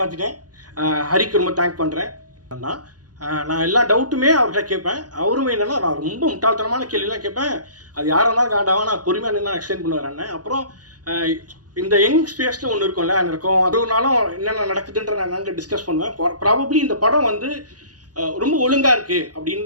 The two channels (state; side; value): late; left; 0.69 ms